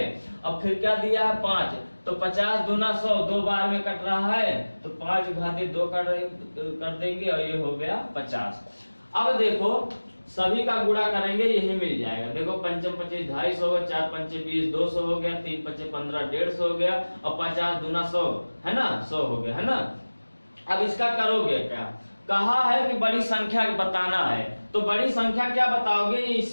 अब फिर क्या दिया है 5, तो 50 दूना 100, 2 बार में कट रहा है तो 5 घाते 2 कर देंगे और ये हो गया 50। अब देखो सभी का गुणा करेंगे यही मिल जाएगा। देखो 5 25 250 हो गया, 4 5 20 200 हो गया, 3 5 15 150 हो गया और 50 दूना 100 है ना, 100 हो गया है ना। अब इसका करोगे क्या, कहा है कि बड़ी संख्या बताना है, तो बड़ी संख्या क्या बताओगे,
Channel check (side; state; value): both; inverted; correlation -1.00